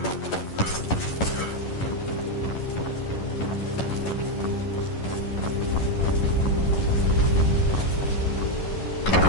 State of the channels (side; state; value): right; late; 11 ms